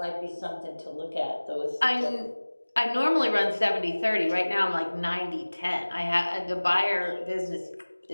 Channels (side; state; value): both; inverted; correlation -1.00